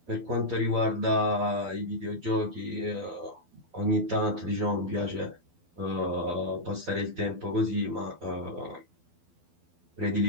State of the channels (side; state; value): left; late; 12 ms